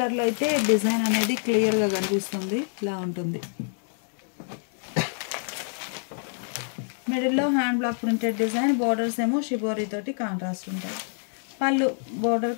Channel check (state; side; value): silent; right; 60 dB below the other